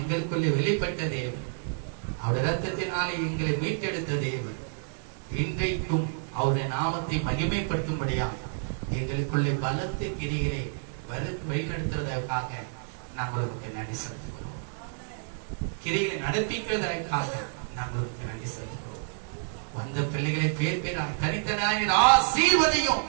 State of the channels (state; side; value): silent; left; 59 dB below the other